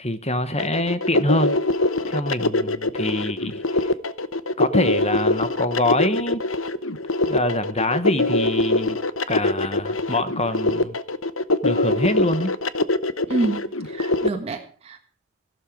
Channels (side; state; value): both; normal; correlation 0.05